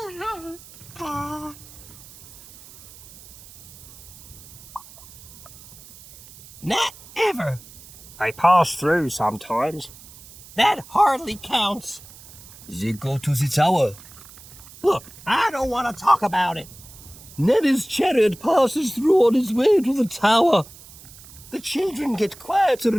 Not ever. I pass through sometimes. That hardly counts. They go to the tower. Look, I don't want to talk about it. Nanny's chariot passes through on its way to the tower. The children get quieter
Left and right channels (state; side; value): noise; right; hiss, 19 dB below the sound